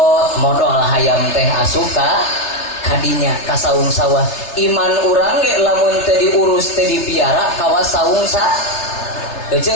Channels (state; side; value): late; right; 3.3 ms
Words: modal hayam teh asup kadinya ka saung sawah iman urang ge lamun teu diurus teu dipiara kawas saung sa euy